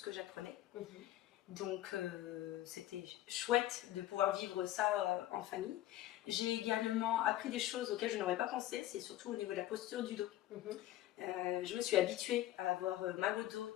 que j'apprenais. Donc c'était chouette de pouvoir vivre ça en famille. J'ai également appris des choses auxquelles je n'aurais pas pensé, c'est surtout au niveau de la posture du dos. Je me suis habituée à avoir mal au dos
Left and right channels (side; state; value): right; quieter; 14.4 dB